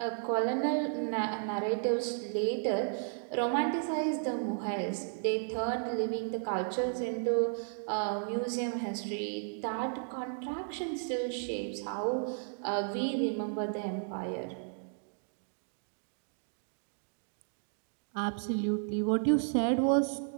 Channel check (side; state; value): left; silent; digital silence